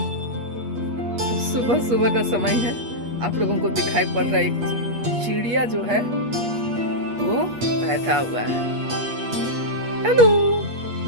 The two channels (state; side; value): late; left; 8.3 ms